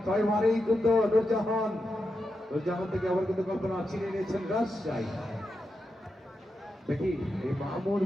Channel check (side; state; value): both; normal; correlation 0.87